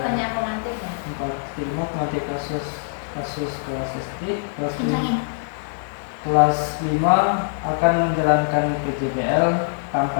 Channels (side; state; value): right; silent; digital silence